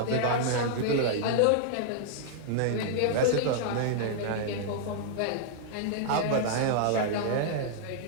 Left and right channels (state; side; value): different; both; correlation -0.01